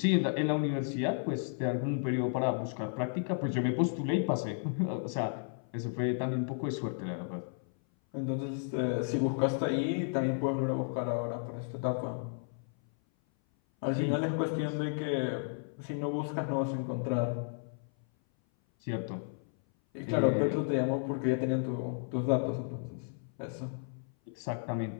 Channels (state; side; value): silent; right; 56 dB below the other